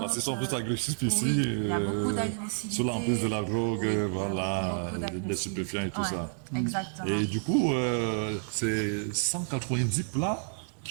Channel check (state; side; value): silent; left; 58 dB below the other